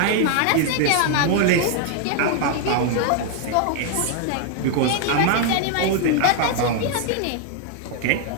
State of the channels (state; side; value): different; both; correlation 0.00